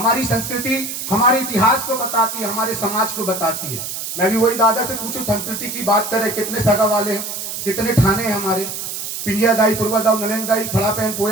संस्कृति हमारे इतिहास को बताती है, हमारे समाज को बताती है। मैं भी वही दादा से पूछूं, संस्कृति की बात करें, कितने सगा वाले हैं, कितने थाने हैं हमारे? पिंजिया दाई, पूर्वा दाऊ, नलेन दाई, फड़ा पहन,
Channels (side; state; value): right; noise; hiss, 6 dB below the sound